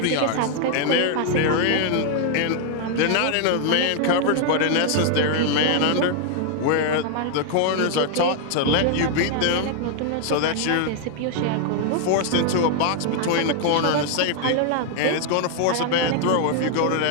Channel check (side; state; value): both; different; correlation 0.00